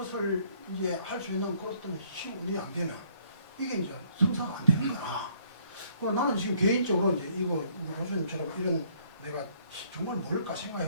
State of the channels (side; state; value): both; inverted; correlation -0.63